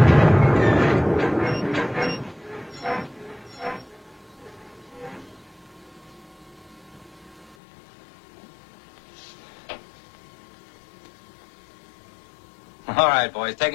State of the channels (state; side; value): drops out; right; at 7.6 s